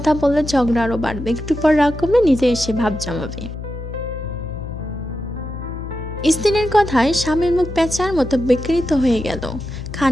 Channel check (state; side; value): noise; left; hum, 9 dB below the sound